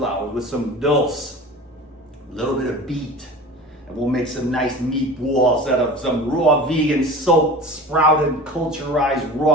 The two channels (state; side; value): normal; both; correlation 0.36